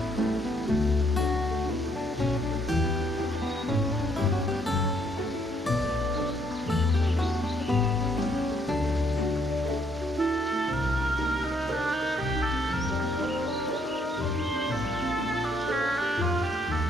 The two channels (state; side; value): normal; both; correlation 0.70